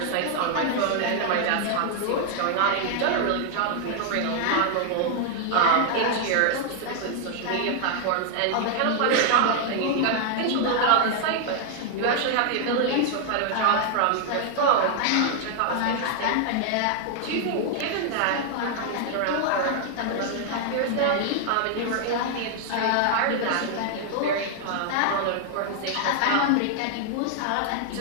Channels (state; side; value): different; both; correlation 0.00